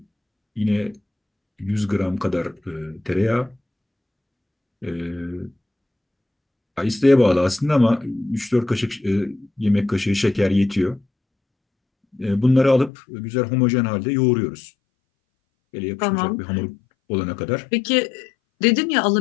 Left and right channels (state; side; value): drops out; right; at 12.9 s